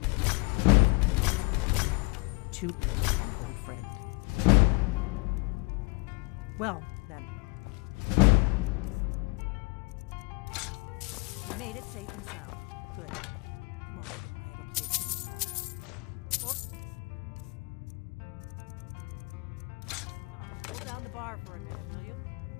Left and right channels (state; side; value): quieter; right; 28.2 dB